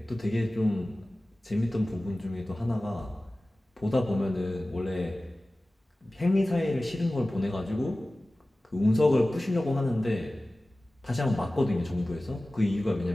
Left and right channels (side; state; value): both; normal; correlation 0.97